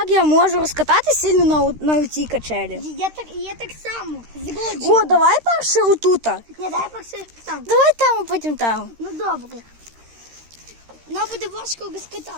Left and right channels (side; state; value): left; late; 13 ms